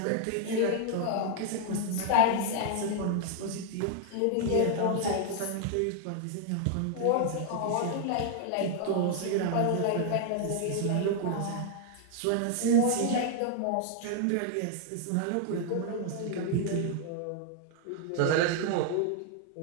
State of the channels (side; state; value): both; different; correlation 0.00